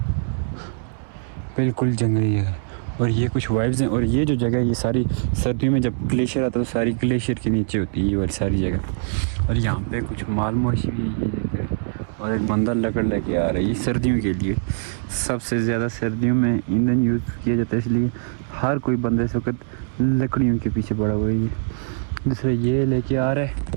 बिल्कुल जंगल ही जगह। और ये कुछ वाइब्स हैं। और ये जो जगह है ये सारी सर्दियों में जब ग्लेशियर आता है तो सारी ग्लेशियर के नीचे होती है ये वाली सारी जगह। और यहाँ पे कुछ माल मवेशी भी है, ये जगह। और एक बंदा लकड़ लेके आ रहा है, ये सर्दियों के लिए सबसे ज़्यादा सर्दियों में ईंधन यूज़ किया जाता है, इसलिए हर कोई बंदा इस वक्त लकड़ियों के पीछे पड़ा हुआ है। दूसरा ये लेके आ रहा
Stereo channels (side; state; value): left; silent; 64 dB below the other